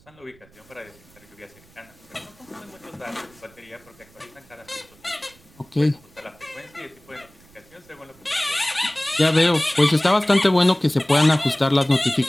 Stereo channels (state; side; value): noise; right; rumble, 28 dB below the sound